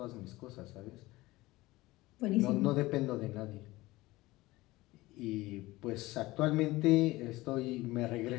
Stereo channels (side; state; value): right; quieter; 19.4 dB